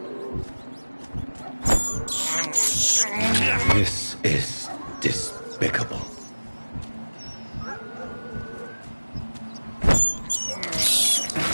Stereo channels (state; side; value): inverted; both; correlation -1.00